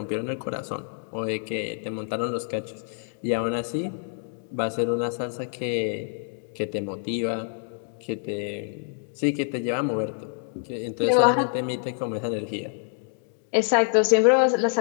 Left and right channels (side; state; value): right; silent; 60 dB below the other